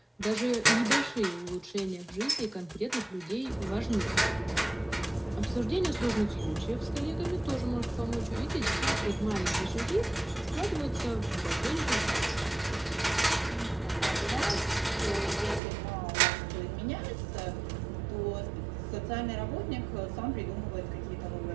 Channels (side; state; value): left; drops out; at 15.6 s